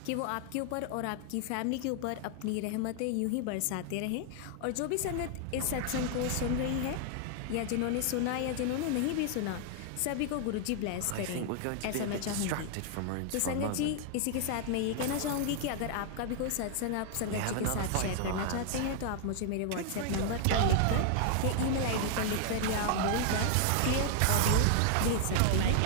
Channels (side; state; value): both; different; correlation 0.00